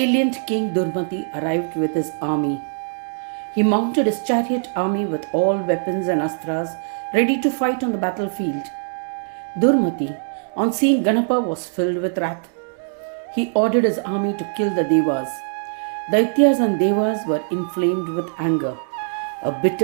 King Durmati arrived with his army. He mounted his chariot army with all weapons and astras ready to fight on the battlefield. Durmati, on seeing Ganapa, was filled with wrath. He ordered his army to kill the Devas. Daityas and Devas were inflamed with anger. A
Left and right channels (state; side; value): silent; left; digital silence